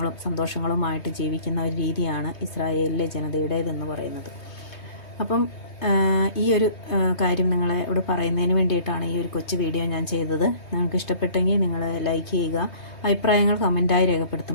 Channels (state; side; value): late; right; 3.2 ms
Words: സന്തോഷങ്ങളുമായിട്ട് ജീവിക്കുന്ന ഒരു രീതിയാണ് ഇസ്രായേലിലെ ജനതയുടേതെന്ന് പറയുന്നത്. അപ്പം ഈ ഒരു കാര്യം നിങ്ങളോട് പറയുന്നതിന് വേണ്ടിയിട്ടാണ് ഈ ഒരു കൊച്ചു വീഡിയോ ഞാൻ ചെയ്തത്. നിങ്ങൾക്ക് ഇഷ്ടപ്പെട്ടെങ്കിൽ നിങ്ങൾ ലൈക്ക് ചെയ്യുക, അഭിപ്രായങ്ങൾ കമൻറ്റായി